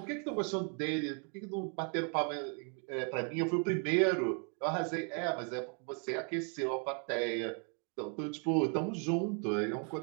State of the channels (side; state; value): left; quieter; 40.0 dB